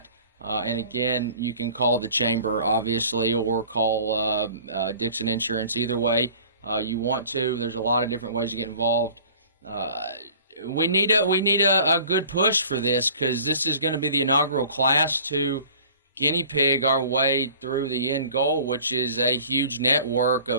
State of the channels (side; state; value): both; inverted; correlation -0.47